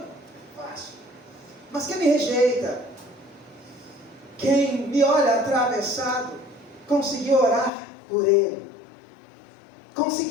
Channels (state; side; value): drops out; right; at 7.7 s